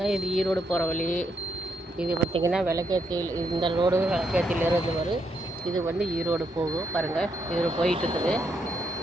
இது ஈரோடு போகிற வழி. இது பார்த்திங்கன்னா விளக்கேத்தியில், இந்த ரோடு விளக்கேத்தியிலேருந்து வரும். இது வந்து ஈரோடு போகும் பாருங்கள். இது போயிட்டுருக்குது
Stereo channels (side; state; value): both; normal; correlation 0.78